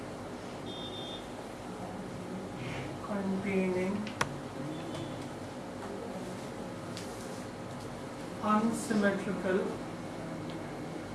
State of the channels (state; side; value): identical; both; correlation 1.00